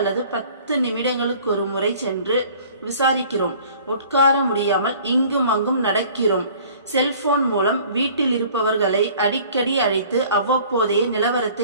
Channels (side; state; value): both; inverted; correlation -0.51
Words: 10 நிமிடங்களுக்கு ஒரு முறை சென்று விசாரிக்கிறோம். உட்கார முடியாமல் இங்கும் அங்கும் நடக்கிறோம். செல்போன் மூலம் வீட்டில் இருப்பவர்களை அடிக்கடி அழைத்து அவ்வப்போதைய